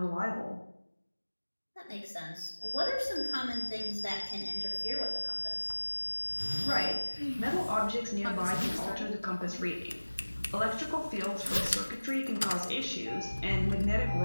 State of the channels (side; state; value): both; inverted; correlation -1.00